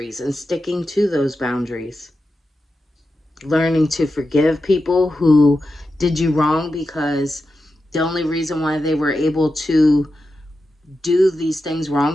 and sticking to those boundaries. Learning to forgive people who did you wrong because the only reason why they were able to do these things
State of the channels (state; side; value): normal; both; correlation 0.90